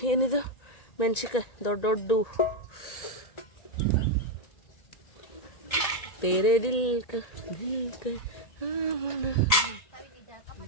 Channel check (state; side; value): late; right; 1.7 ms